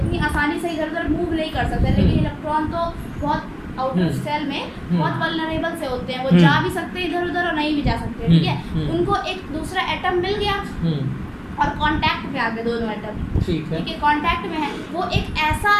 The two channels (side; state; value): both; identical; correlation 1.00